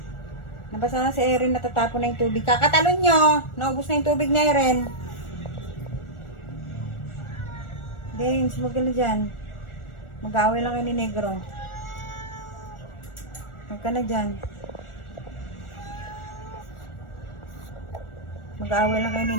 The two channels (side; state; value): right; late; 1.4 ms